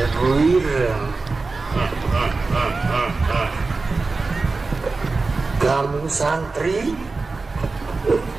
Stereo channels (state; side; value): quieter; left; 3.9 dB